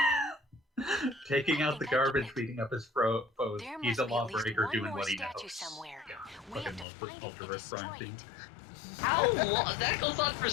Taking out the garbage, beating up his foes. He's a lawbreaker doing what he knows. Somewhere. Fucking love the Ultraverse crime scene. How long? That goes on for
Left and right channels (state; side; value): drops out; right; at 6.9 s